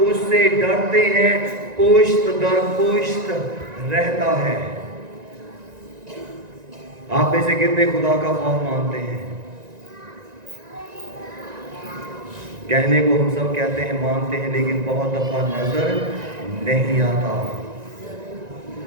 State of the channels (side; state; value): left; late; 1.9 ms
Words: उससे डरते हैं पुश्त दर पुश्त रहता है। आप में से कितने खुदा का खौफ मानते हैं? कहने को हम सब कहते हैं मानते हैं, लेकिन बहुत दफा नजर नहीं आता।